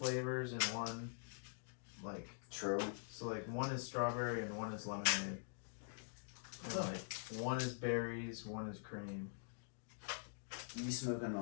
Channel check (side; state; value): right; silent; digital silence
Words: and one like. True. So like one is strawberry and one is lemonade. And like one is berries, one is cream. You be smoking